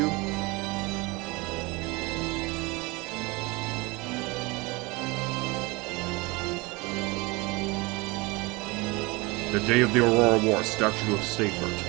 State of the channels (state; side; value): quieter; left; 24.7 dB